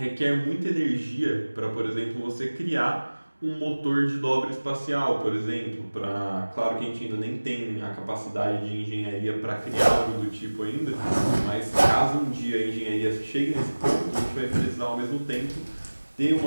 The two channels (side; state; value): both; inverted; correlation -1.00